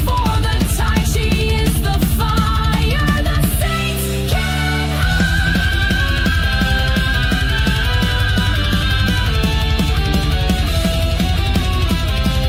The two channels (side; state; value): both; identical; correlation 1.00